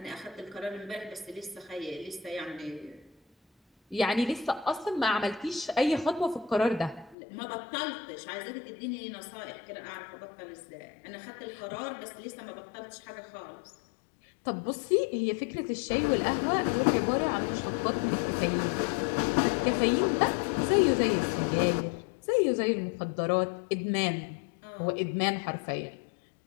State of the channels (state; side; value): drops out; right; at 7.2 s